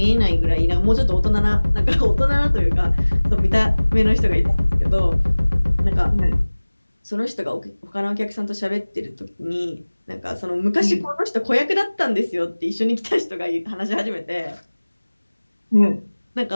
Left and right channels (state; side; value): inverted; both; correlation -1.00